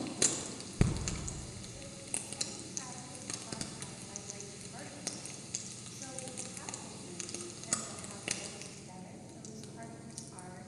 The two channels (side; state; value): both; identical; correlation 1.00